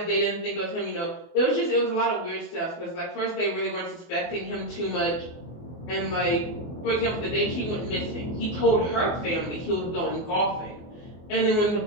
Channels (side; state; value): right; late; 24 ms